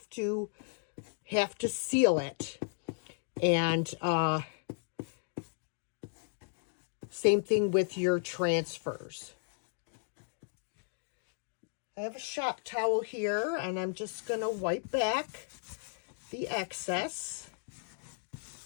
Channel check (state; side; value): silent; right; digital silence